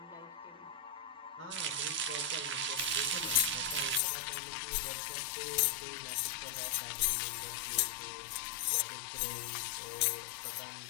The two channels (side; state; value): right; drops out; at 4.0 s